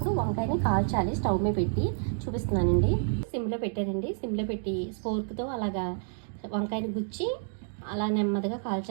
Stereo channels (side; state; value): left; silent; digital silence